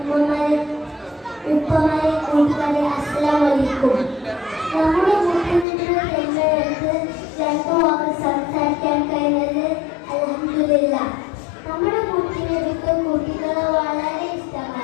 ഉമ്മമാരെ, ഉപ്പമാരെ, കൂട്ടുകാരെ, അസ്സലാമു അലൈക്കും. നമ്മുടെ മുഖ്യമന്ത്രി തെരഞ്ഞെടുത്ത് രണ്ടു വാക്ക് സംസാരിക്കാൻ കഴിഞ്ഞത് അൽഹംദുലില്ലാഹ്. നമ്മുടെ മുഖ്യമന്ത്രിക്ക് കുട്ടികളെ വളരെ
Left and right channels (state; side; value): drops out; right; at 5.7 s